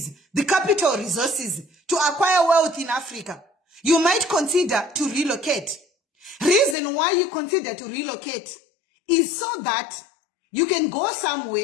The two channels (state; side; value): drops out; right; at 6.8 s